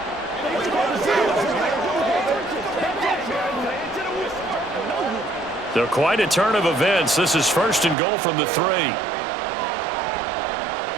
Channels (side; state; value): left; drops out; at 8.0 s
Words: They're quite a turn of events. This is first and goal from the 3.